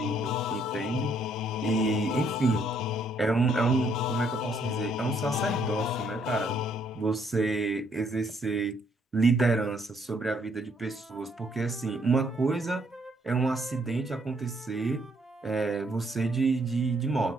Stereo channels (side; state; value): both; normal; correlation 0.69